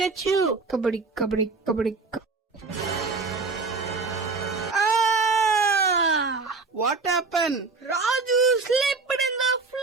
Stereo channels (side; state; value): left; quieter; 4.1 dB